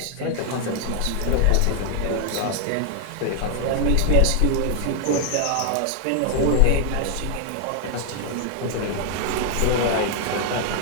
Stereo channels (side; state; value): both; different; correlation 0.00